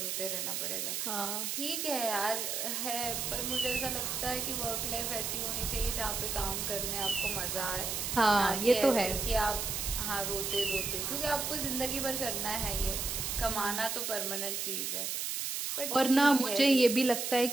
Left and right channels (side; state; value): right; noise; hiss, 2 dB below the sound